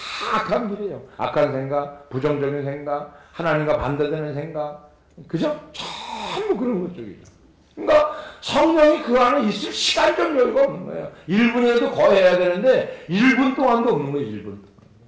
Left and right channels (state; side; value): identical; both; correlation 1.00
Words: 악한 길이에요. 악한 생각, 부정적인 생각, 하나님과 반대되는 생각, 그죠? 전부 그런 것쪽이죠. 그러니까 성령이 그 안에 있을 시간적 여유가 없는 거예요. 1분이라도 거해야 되는데 1분 동안도 없는 거예요. 1분 동안.